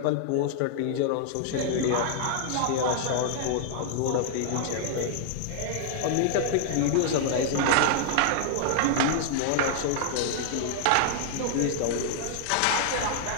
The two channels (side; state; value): both; different; correlation -0.01